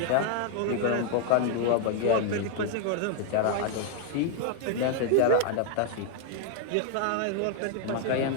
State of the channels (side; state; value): both; different; correlation 0.00